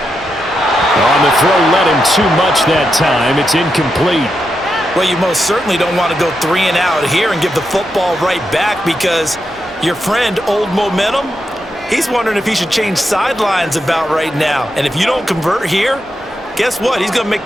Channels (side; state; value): both; normal; correlation 0.85